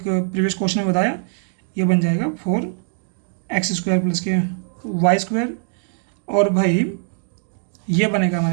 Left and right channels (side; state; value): left; silent; digital silence